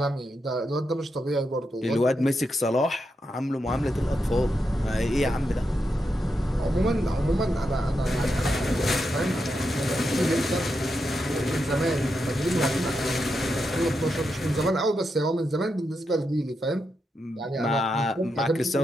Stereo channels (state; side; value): normal; both; correlation 0.85